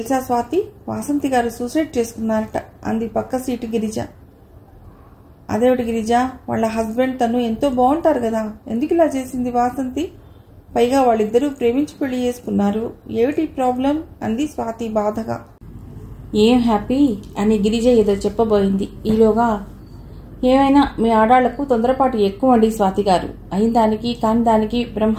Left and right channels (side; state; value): both; identical; correlation 1.00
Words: స్వాతి, వాసంతి గారు సూసైడ్ చేసుకున్నారట అంది పక్క సీటు గిరిజ. అదేవిటి గిరిజ, వాళ్ళ హస్బెండ్ తను ఎంతో బాగుంటారు కదా, ఎందుకు ఇలా చేసింది వాసంతి? పైగా వాళ్ళిద్దరూ ప్రేమించి పెళ్లి చేసుకున్నారు, ఏమిటి ప్రాబ్లం అంది స్వాతి బాధగా. ఏం హ్యాపీ అని గిరిజ ఏదో చెప్పబోయింది. ఈలోగా ఏమైనా మీ ఆడాళ్లకు తొందరపాటు ఎక్కువ అండి స్వాతి గారు. అయిన దానికి కాని దానికి